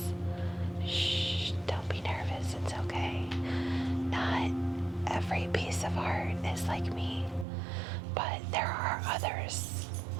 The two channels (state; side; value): drops out; left; at 7.5 s